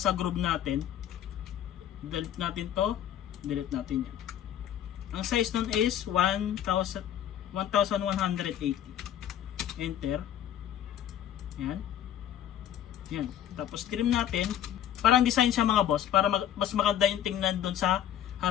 groove natin. Delete natin to, delete natin yan. Ang size nun is 1180. Enter. Yan. Yan. Tapos trim natin. Parang design siya mga boss, para mas maganda yung tingnan dun sa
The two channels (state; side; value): quieter; right; 10.8 dB